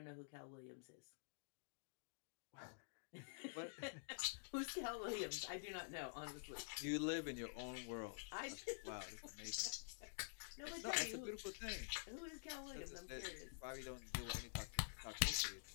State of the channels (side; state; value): right; silent; digital silence